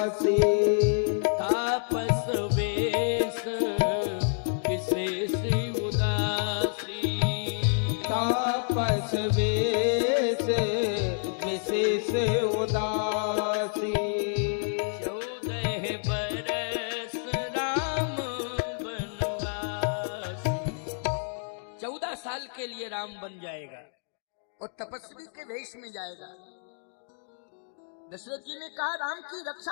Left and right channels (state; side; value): silent; right; digital silence